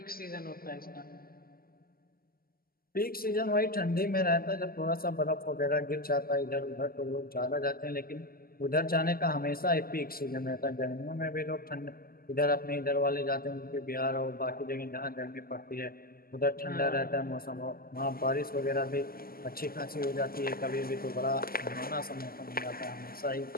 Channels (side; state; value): right; late; 0.43 ms